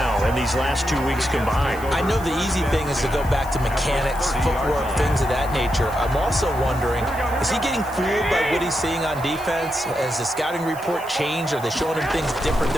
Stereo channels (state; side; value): noise; left; hiss, 19 dB below the sound